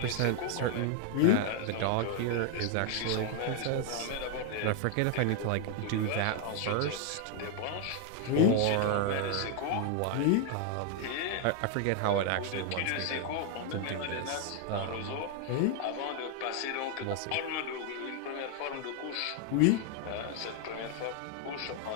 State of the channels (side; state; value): both; different; correlation 0.00